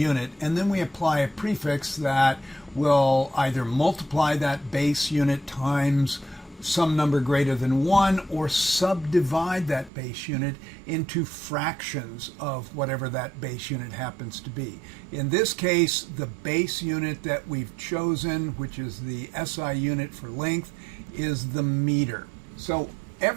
and then we apply a prefix that will either multiply that base unit times some number greater than 1 or subdivide that base unit into fractions of whatever that base unit happens to be. In this case, the base unit that we've chosen, which is the SI unit for length, is the meter. So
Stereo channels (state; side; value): drops out; left; at 9.9 s